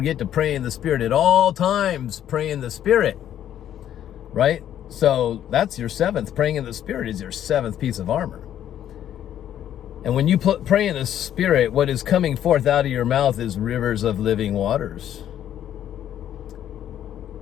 to pray in the Spirit at all times, pray in the Spirit, right? So that's your seventh. Praying in the Spirit is your seventh piece of armor. And when you pray in the Spirit, what is coming forth out of your mouth is rivers of living waters.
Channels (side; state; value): right; quieter; 10.8 dB